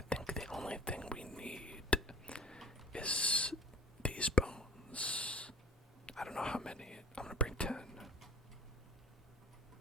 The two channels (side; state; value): both; normal; correlation 0.46